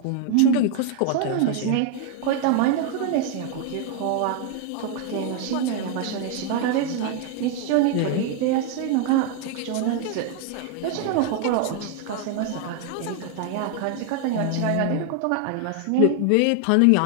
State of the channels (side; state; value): both; different; correlation 0.00